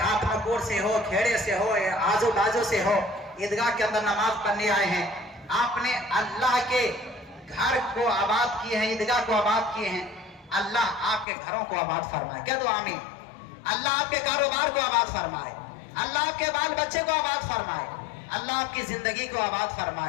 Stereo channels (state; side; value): drops out; right; at 11.2 s